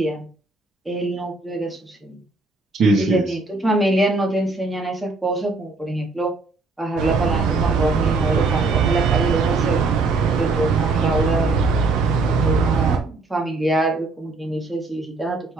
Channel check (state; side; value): quieter; left; 3.5 dB